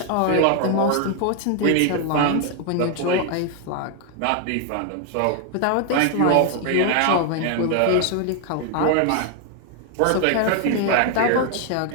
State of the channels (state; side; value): different; both; correlation 0.00